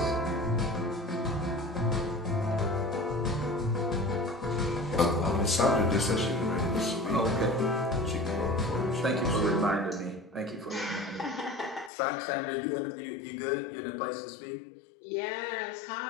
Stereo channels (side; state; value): right; drops out; at 11.9 s